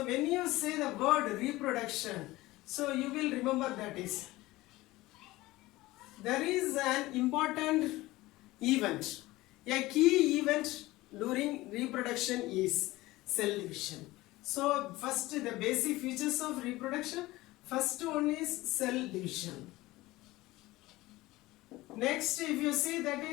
when you say the word reproduction, so you will remember that is there is an important event. A key event during reproduction is cell division. So first the basic features of reproduction. First one is cell division. Next, if you see, that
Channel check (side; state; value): right; quieter; 18.8 dB